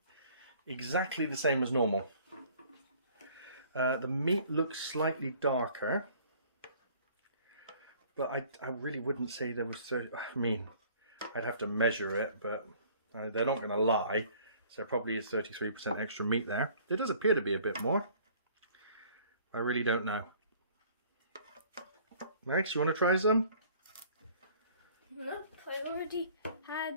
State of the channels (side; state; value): both; inverted; correlation -0.54